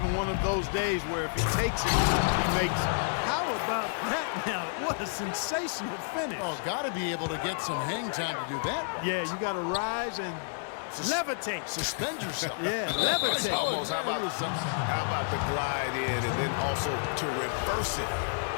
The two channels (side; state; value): right; silent; digital silence